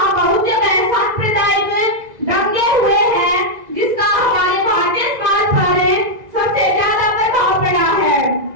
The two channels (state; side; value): late; left; 1.9 ms